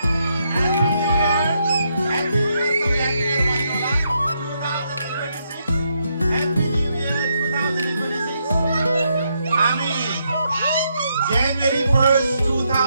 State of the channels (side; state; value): both; inverted; correlation -0.78